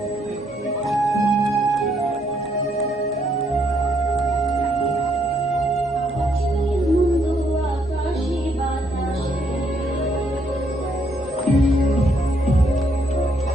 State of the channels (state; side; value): normal; both; correlation 0.72